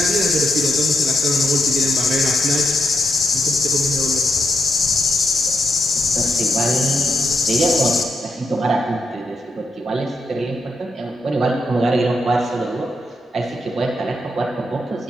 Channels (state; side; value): normal; both; correlation 0.82